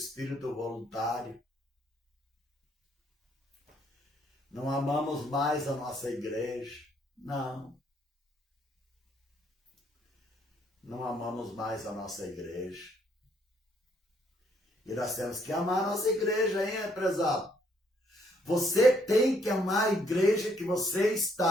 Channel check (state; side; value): normal; both; correlation 0.69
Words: voluntário. Não amamos mais a nossa igreja. Não. Não amamos mais a nossa igreja. E nós temos que amar a nossa igreja, hein, prezado? Você tem que amar a igreja que você